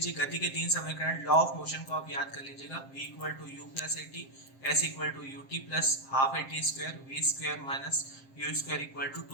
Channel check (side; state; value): right; late; 7.5 ms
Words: गति के तीन समीकरण, लॉ ऑफ मोशन को आप याद कर लीजिएगा। v equal to u plus a t, s equal to u t plus half a t square, v square minus u square equal to